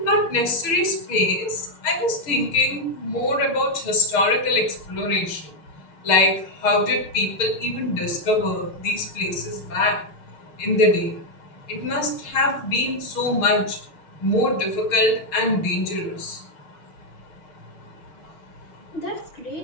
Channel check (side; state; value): right; late; 6.5 ms